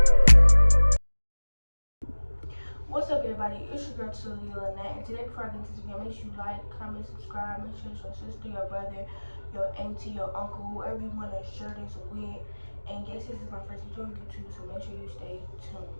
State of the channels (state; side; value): inverted; both; correlation -1.00